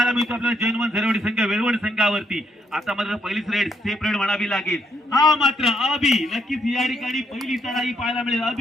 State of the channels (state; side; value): normal; both; correlation 0.74